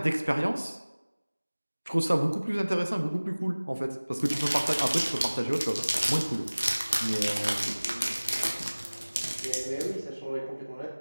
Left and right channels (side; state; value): both; inverted; correlation -1.00